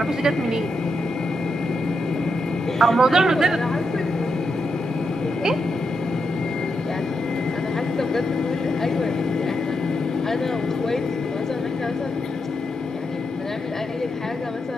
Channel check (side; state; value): both; normal; correlation 0.83